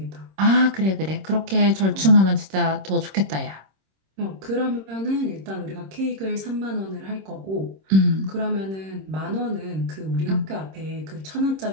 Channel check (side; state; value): left; late; 26 ms